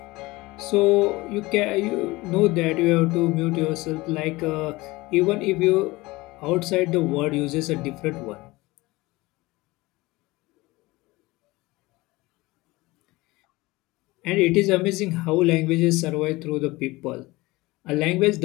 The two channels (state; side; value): quieter; right; 21.1 dB